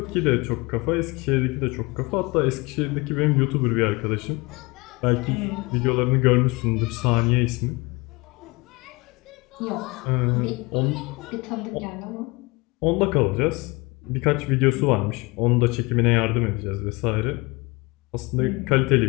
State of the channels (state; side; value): quieter; right; 25.5 dB